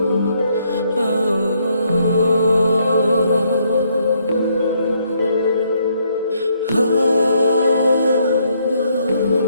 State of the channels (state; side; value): inverted; both; correlation -0.72